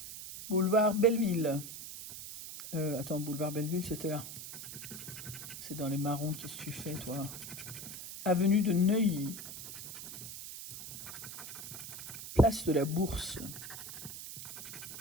Boulevard Belleville. Attends, boulevard Belleville, c'était là. C'est dans les marrons, qu'est-ce que tu fais, toi? Avenue de Neuilly. Place de la Bourse.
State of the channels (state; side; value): noise; right; hiss, 9 dB below the sound